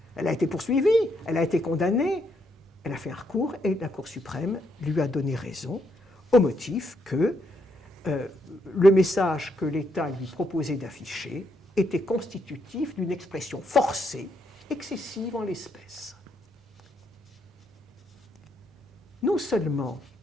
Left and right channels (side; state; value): both; normal; correlation 0.76